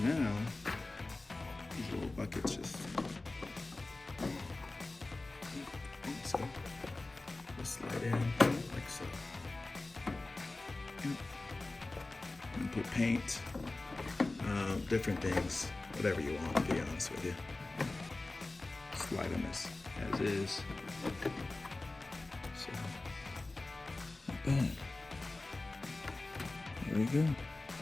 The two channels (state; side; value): quieter; right; 3.1 dB